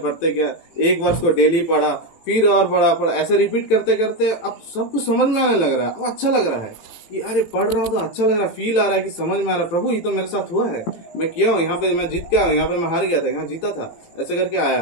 गया, एक वर्ष को डेली पढ़ा, फिर और पढ़ा, ऐसे रिपीट करते करते अब सब कुछ समझ में आने लग रहा है। अब अच्छा लग रहा है कि अरे पढ़ रहा हूँ तो अच्छा लग रहा है, फील आ रहा है कि समझ में आ रहा है, प्रभु ये तो मेरे साथ हुआ है, मैं किया हूँ, यहाँ पे मैं जीत के आया हूँ, यहाँ पे मैं हार गया था, यहाँ जीता था, ऐसे करके आया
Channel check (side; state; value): right; late; 18 ms